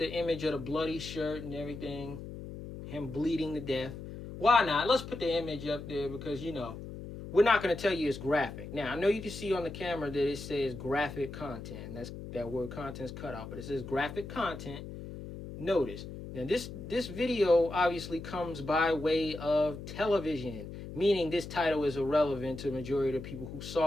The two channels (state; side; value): noise; left; hum, 10 dB below the sound